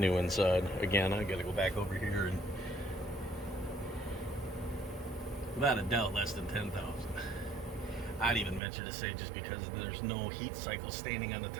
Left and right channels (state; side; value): drops out; left; at 8.6 s